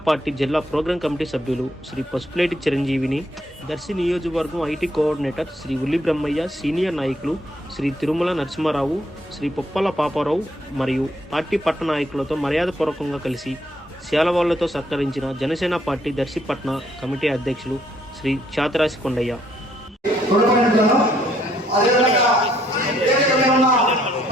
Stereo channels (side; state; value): both; normal; correlation 0.69